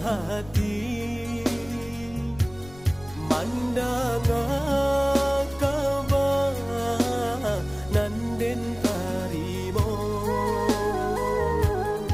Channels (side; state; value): left; noise; rumble, 19 dB below the sound